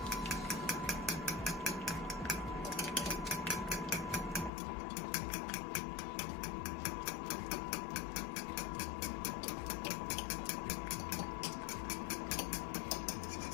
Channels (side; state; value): right; drops out; at 4.5 s